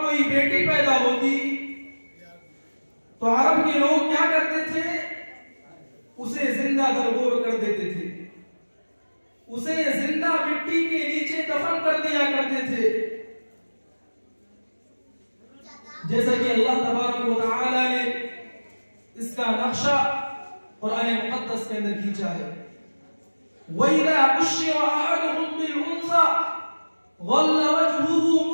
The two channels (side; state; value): both; inverted; correlation -1.00